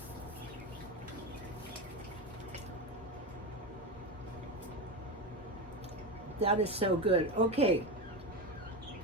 That is so good. Okay,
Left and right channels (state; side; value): normal; both; correlation 0.17